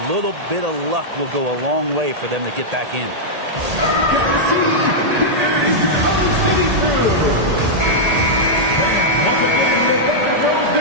little bit of luck will go a long way for them to get back in.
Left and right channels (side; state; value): left; late; 1.8 ms